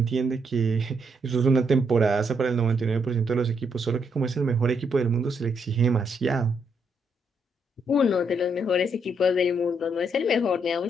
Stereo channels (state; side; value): normal; both; correlation 0.76